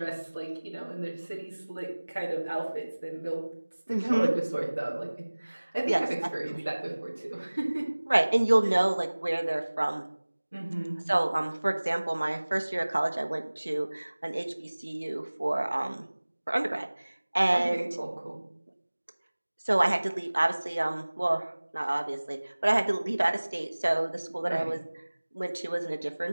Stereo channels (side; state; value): both; inverted; correlation -1.00